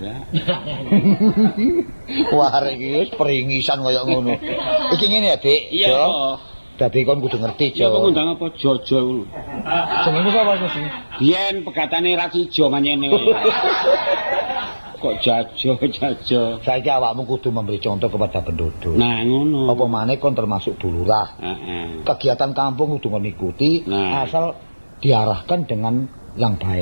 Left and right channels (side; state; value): both; inverted; correlation -1.00